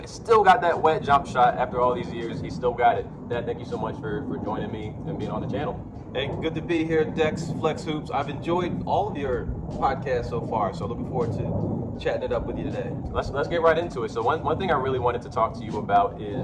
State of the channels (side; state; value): both; identical; correlation 1.00